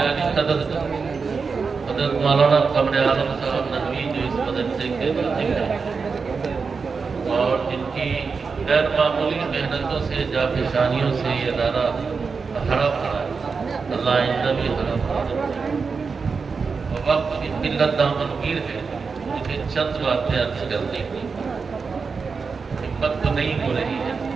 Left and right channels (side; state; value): left; quieter; 5.0 dB